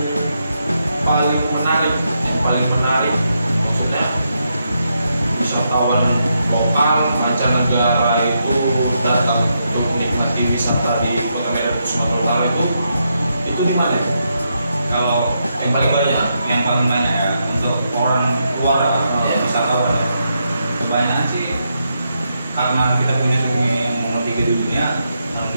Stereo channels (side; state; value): both; inverted; correlation -0.82